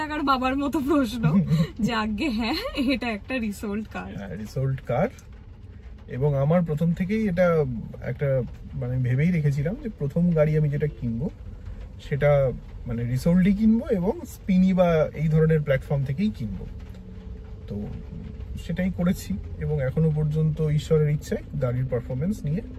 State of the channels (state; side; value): identical; both; correlation 1.00